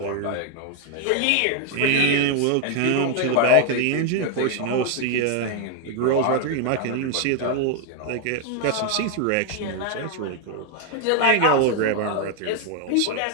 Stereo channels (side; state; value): both; different; correlation 0.00